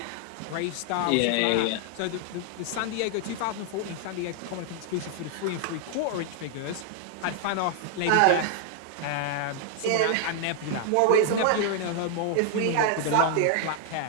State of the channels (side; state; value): both; different; correlation 0.00